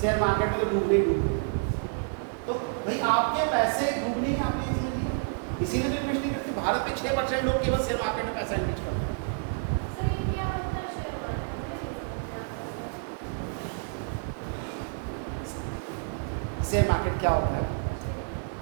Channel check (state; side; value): silent; left; 59 dB below the other